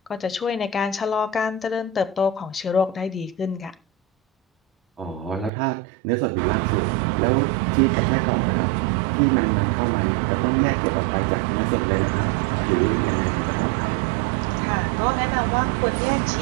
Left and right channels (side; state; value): left; drops out; at 5.5 s